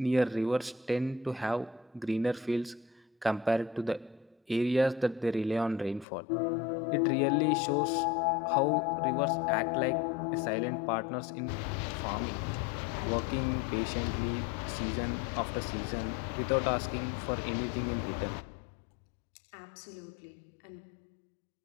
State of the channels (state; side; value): drops out; right; at 6.1 s